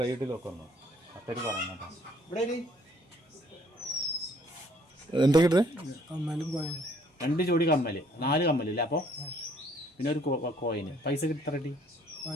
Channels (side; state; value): both; normal; correlation 0.62